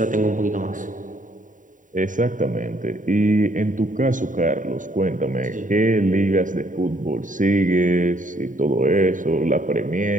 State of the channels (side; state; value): left; late; 0.38 ms